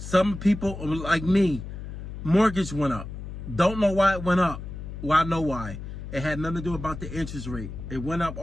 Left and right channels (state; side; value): noise; left; hum, 9 dB below the sound